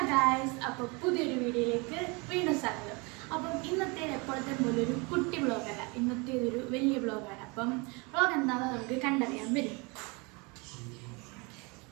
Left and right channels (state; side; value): quieter; left; 28.9 dB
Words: guys, അപ്പോൾ പുതിയൊരു വീഡിയോയിലേക്ക് വീണ്ടും സ്വാഗതം. അപ്പം ഇന്നത്തെ എപ്പോഴത്തെ പോലെ ഒരു കുട്ടി വ്ളോഗല്ല, ഇന്നത്തെ ഇതൊരു വലിയ വ്ളോഗാണ്. അപ്പം വ്ളോഗ് എന്താണെന്ന് നമുക്ക് കണ്ടറിയാൻ വരും.